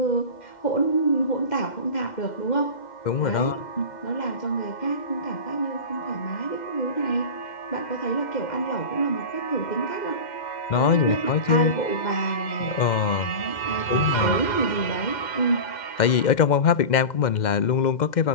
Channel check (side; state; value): right; late; 2.1 ms